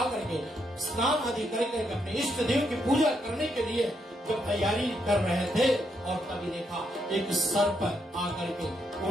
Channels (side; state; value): both; normal; correlation 0.78